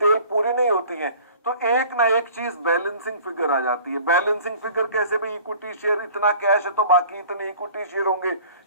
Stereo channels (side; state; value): both; inverted; correlation -0.48